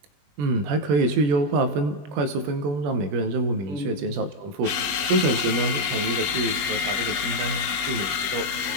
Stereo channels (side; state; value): left; late; 20 ms